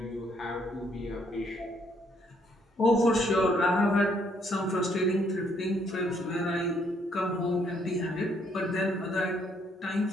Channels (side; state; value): both; normal; correlation 0.69